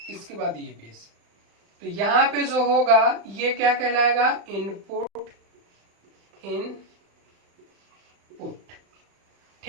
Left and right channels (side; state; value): left; late; 35 ms